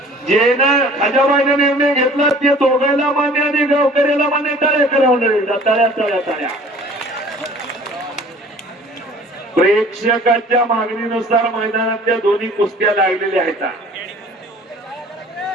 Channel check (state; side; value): normal; both; correlation 0.49